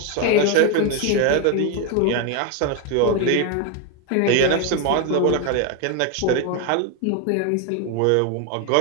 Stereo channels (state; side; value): different; both; correlation 0.02